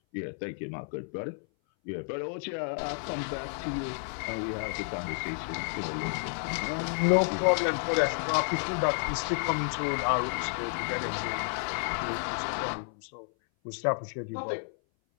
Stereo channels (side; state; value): right; silent; 57 dB below the other